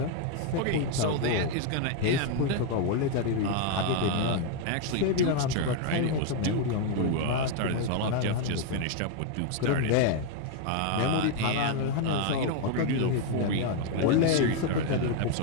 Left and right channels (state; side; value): different; both; correlation 0.00